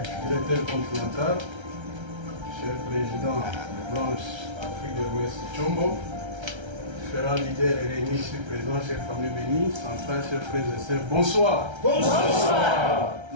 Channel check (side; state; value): left; late; 1.3 ms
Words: directeur continental, cher président de Blanche Afrique de l'Ouest Tchombo, différents leaders réunis ici présents, chers familles bénies, centrales, chers frères et sœurs, bonsoir. Bonsoir.